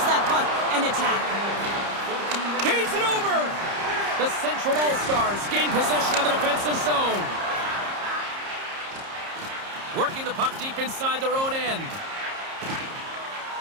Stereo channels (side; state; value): left; late; 30 ms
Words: that puck and attack. Gains it over! The Central All-Stars gain possession of the defensive zone. Working the puck deep inside their own end.